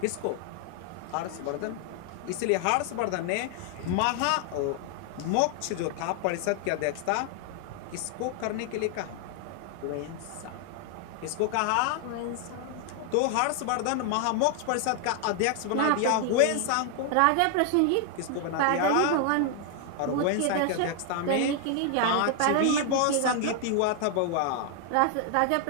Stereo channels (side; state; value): both; different; correlation 0.00